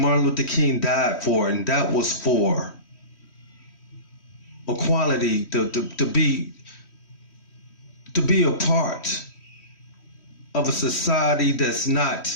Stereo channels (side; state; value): right; late; 3.1 ms